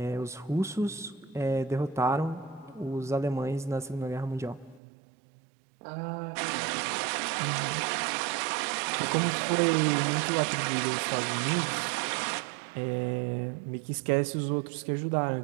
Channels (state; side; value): drops out; left; at 4.8 s